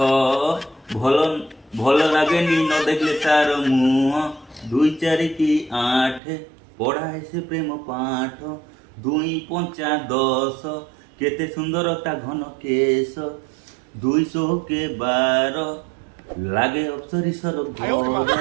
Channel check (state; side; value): drops out; left; at 6.2 s